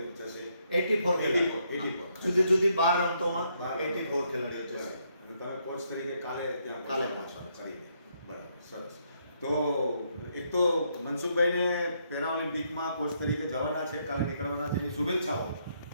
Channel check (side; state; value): both; inverted; correlation -0.74